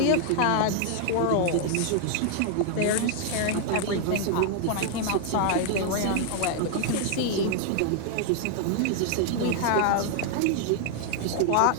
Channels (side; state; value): both; different; correlation 0.00